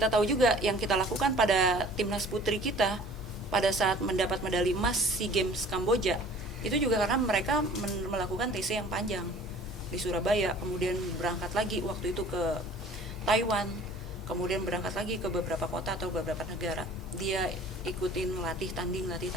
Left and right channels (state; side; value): normal; both; correlation 0.49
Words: tahu juga yang kita lakukan pada timnas putri kita pada saat mendapat medali emas SEA Games Kamboja, itu juga karena mereka melakukan TC yang panjang di Surabaya, kemudian berangkat lagi waktu itu ke Taiwan, kemudian berangkat lagi ke beberapa kota atau beberapa negara. Dia ikutin latih tanding.